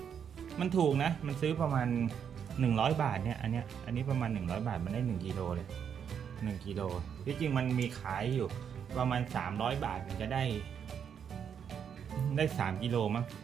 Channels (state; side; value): quieter; left; 7.8 dB